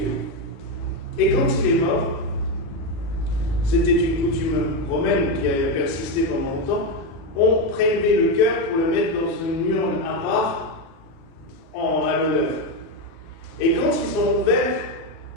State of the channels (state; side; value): late; right; 36 ms